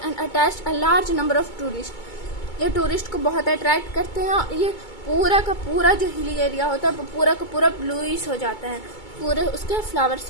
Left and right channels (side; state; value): right; late; 2.2 ms